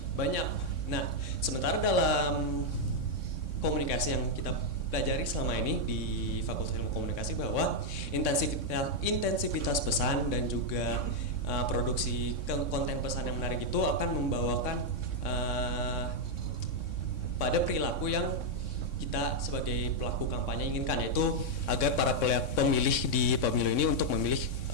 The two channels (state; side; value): late; right; 3.6 ms